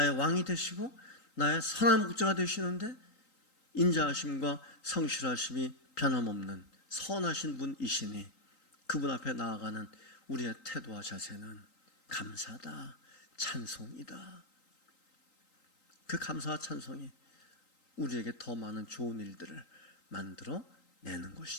왕이 되시고 나의 선한 목자가 되시는데 인자하심과 성실하심이 변함없는 선하신 분이시니 그분 앞에 나아가는 우리의 태도와 자세는 감사다, 찬송이다. 그 감사와 찬송이 우리에게 더 많은 좋은 일들을 만들어 내는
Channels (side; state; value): right; late; 3.8 ms